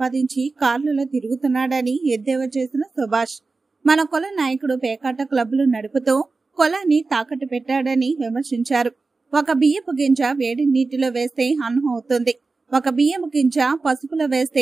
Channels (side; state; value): left; quieter; 3.9 dB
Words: కార్లలో తిరుగుతున్నాడని ఎద్దేవా చేసిన సుభాష్. మన కుల నాయకుడు పేకాట క్లబ్లు నడుపుతూ కులాన్ని తాకట్టు పెట్టాడని విమర్శించారు. ఒక బియ్యపు గింజ వేడి నీటిలో వేస్తే అన్నం అవుతుంది, ఒక బియ్యపు గింజ పసుపులో